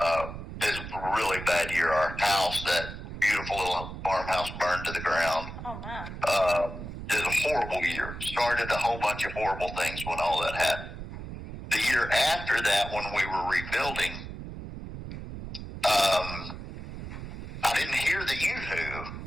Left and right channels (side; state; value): right; noise; rumble, 9 dB below the sound